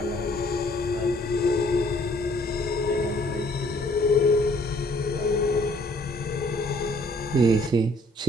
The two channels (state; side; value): normal; both; correlation 0.61